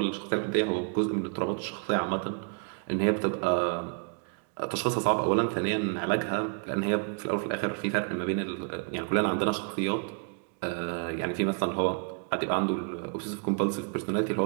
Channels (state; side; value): quieter; left; 39.7 dB